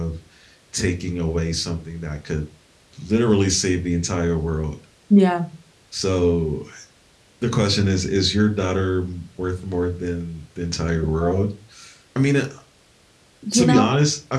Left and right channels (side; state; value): both; identical; correlation 1.00